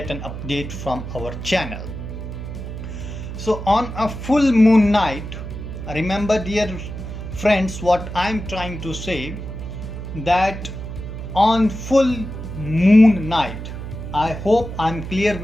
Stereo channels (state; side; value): noise; right; hum, 8 dB below the sound